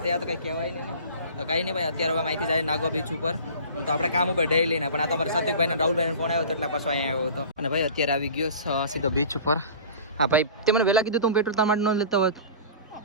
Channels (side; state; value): both; inverted; correlation -0.40